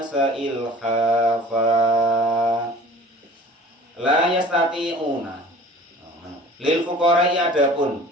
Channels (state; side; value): normal; both; correlation 0.45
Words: ilhafa la yastati'una lil fuqara'i adapun